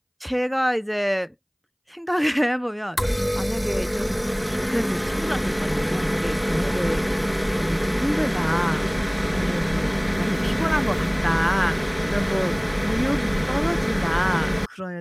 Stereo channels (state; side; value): identical; both; correlation 1.00